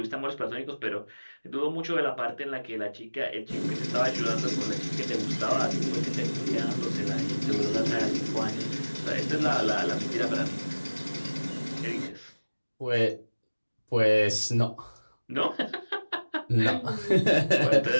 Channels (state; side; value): inverted; both; correlation -1.00